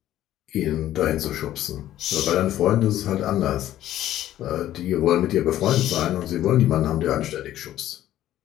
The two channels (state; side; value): quieter; right; 13.0 dB